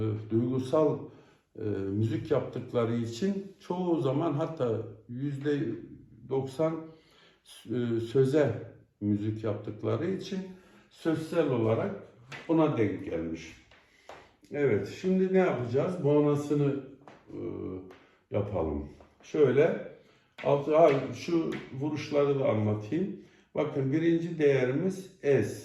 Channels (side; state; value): both; identical; correlation 1.00